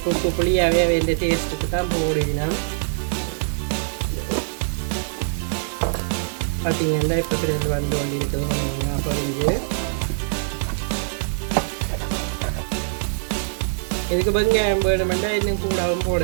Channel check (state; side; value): silent; left; digital silence